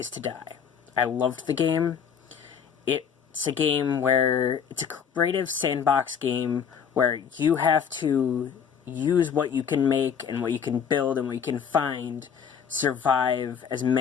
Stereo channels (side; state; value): right; quieter; 7.3 dB